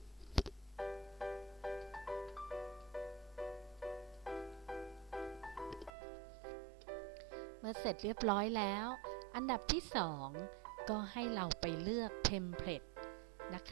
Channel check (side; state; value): left; drops out; at 5.9 s